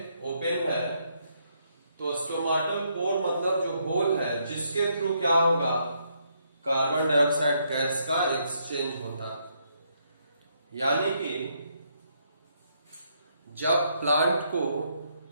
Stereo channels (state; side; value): inverted; both; correlation -0.74